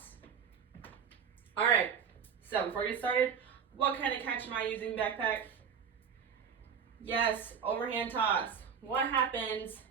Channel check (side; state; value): left; quieter; 7.1 dB